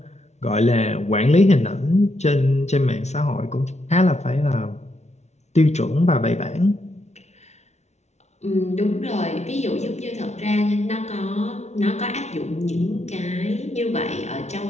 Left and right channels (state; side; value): late; right; 0.32 ms